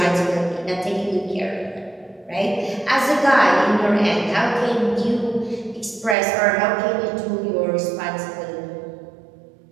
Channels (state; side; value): drops out; left; at 6.2 s